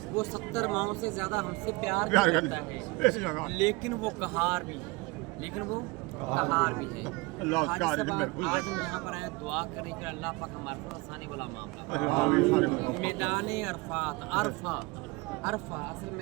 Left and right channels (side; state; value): left; quieter; 23.9 dB